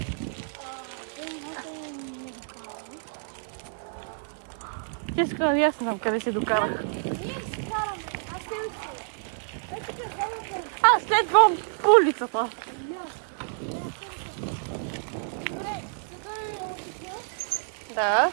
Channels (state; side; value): silent; left; digital silence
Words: Честно, аз не знам къде се докарах. Ние си караме. Аз те уча. Аз следвам по улицата. Добре, сега е улица. Да.